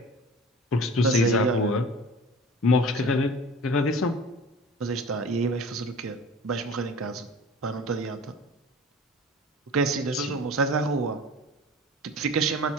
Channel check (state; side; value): normal; both; correlation 0.41